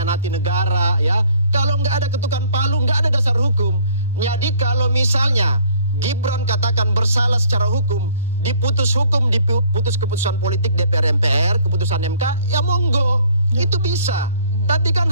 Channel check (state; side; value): inverted; both; correlation -0.57